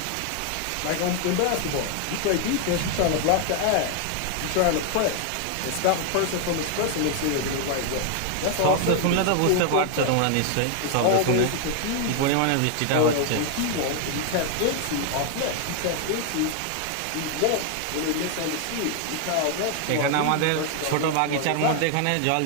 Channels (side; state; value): both; different; correlation 0.00